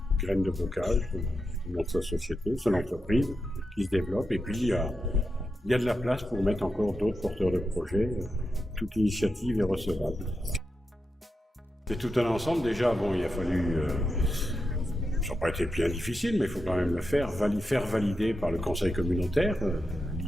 graines de bocage, dans sa société, son entreprise qui se développe. Et puis il y a de la place pour mettre encore d'autres porteurs de projets. Toute initiative est recevable. C'est tout un ensemble. Déjà, bon, il a fallu... ça n'a pas été bien difficile, mais il faut quand même le faire valider par le conseil communautaire,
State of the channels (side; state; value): both; normal; correlation 0.88